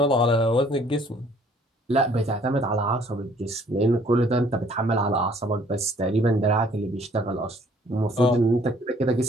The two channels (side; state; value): both; normal; correlation 0.59